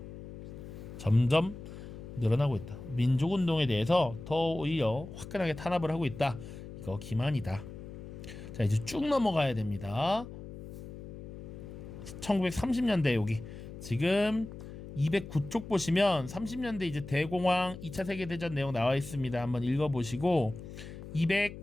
점점 늘어나고 있다. 민족운동에 대해서 더 오히려 화끈하게 탄압을 하고 있다. 이거 기만이다. 자, 이제 쭉 넘어가야 됩니다. 1930년대 여기 지금 209쪽 보시면 30년대 이제 대공황 2차 세계대전 내용 나와 있습니다. 한번 읽어보시고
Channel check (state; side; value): noise; left; hum, 12 dB below the sound